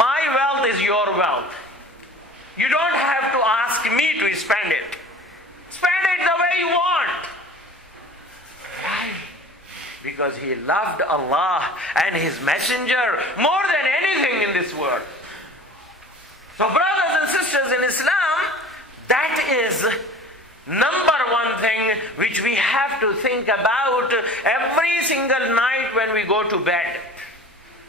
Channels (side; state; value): both; normal; correlation 0.42